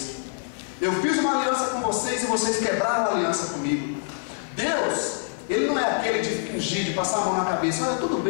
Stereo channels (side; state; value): right; silent; 62 dB below the other